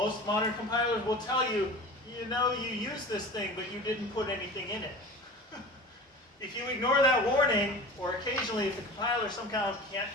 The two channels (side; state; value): both; normal; correlation 0.36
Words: modern compilers will tell you, you know, you use this thing, but you didn't put anything in it. If you ignore that warning, or occasionally if the compiler somehow can't